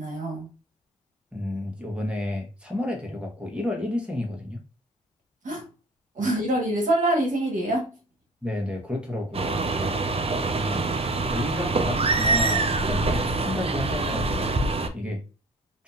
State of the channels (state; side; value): normal; both; correlation 0.43